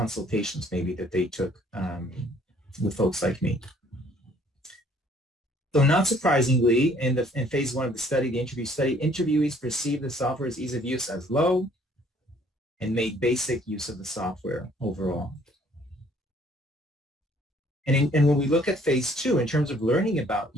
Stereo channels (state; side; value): normal; both; correlation 0.60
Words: maybe that they took with folks like me. So not surprisingly, in phase 1 of the study, the interview study, interviewees perceived the software's ease of use as low and made basic use of the software overall. And when we look at phase 2, in terms of learning about